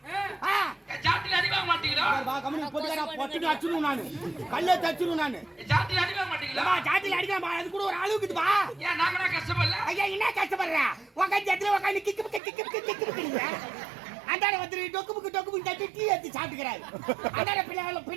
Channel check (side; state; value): left; drops out; at 12.4 s